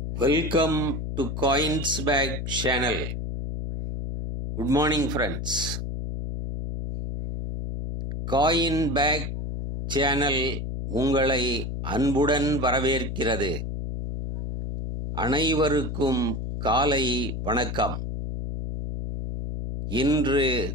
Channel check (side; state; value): left; noise; hum, 4 dB below the sound